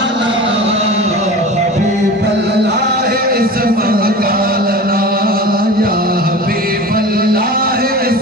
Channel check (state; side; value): normal; both; correlation 0.34